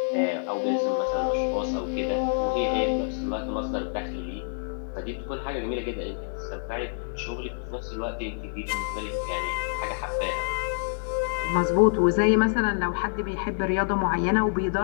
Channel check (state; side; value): silent; right; digital silence